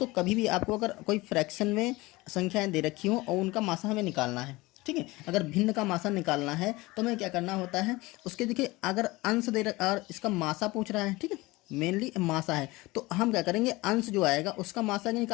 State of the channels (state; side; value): quieter; right; 21.3 dB